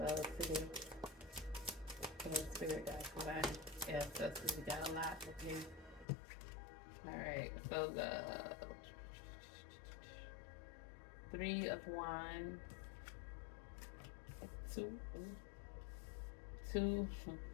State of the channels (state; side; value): drops out; right; at 6.1 s